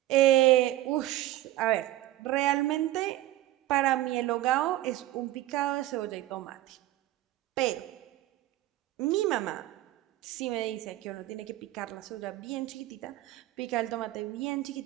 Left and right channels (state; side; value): quieter; left; 15.7 dB